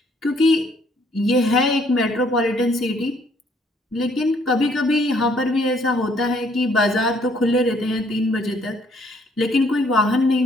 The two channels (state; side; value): normal; both; correlation 0.65